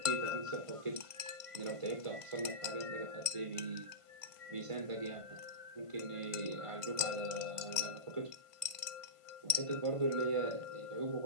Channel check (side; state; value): left; late; 1.5 ms